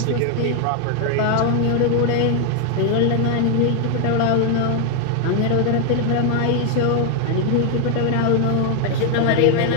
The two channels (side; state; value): both; different; correlation 0.00